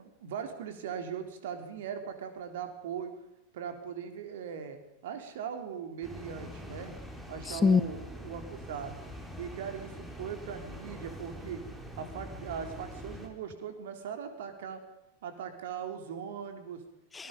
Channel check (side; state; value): both; normal; correlation 0.37